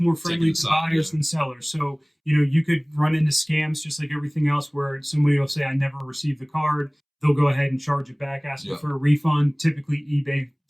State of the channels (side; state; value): both; identical; correlation 1.00